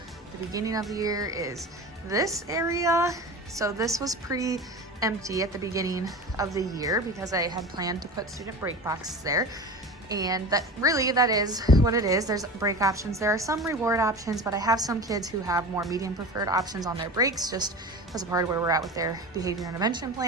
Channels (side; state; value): both; normal; correlation 0.31